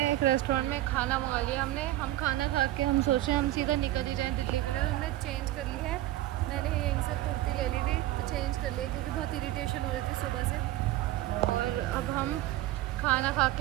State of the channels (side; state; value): left; quieter; 15.5 dB